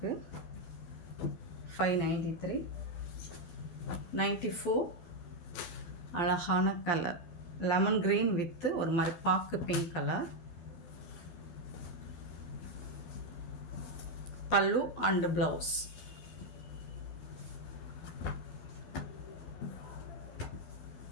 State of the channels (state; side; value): late; right; 12 ms